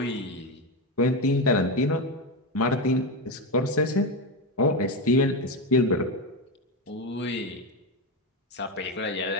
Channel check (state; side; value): normal; both; correlation 0.13